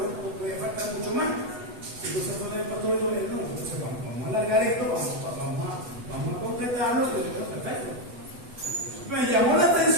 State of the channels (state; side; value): late; left; 8.1 ms